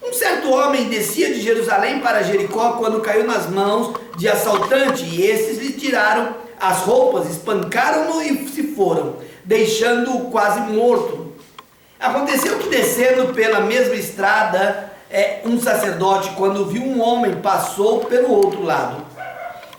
um certo homem descia de Jerusalém para Jericó quando caiu nas mãos de assaltante, e esses lhe tiraram as roupas, espancaram-no e se foram, deixando-o quase morto. Aconteceu que, descendo pela mesma estrada, um sacerdote, quando viu um homem, passou pelo outro lado.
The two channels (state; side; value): identical; both; correlation 1.00